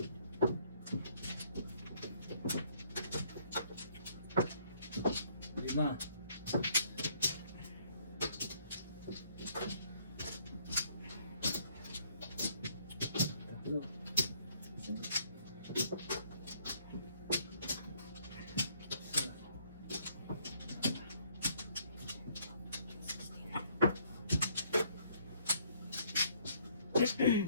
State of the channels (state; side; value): inverted; both; correlation -0.65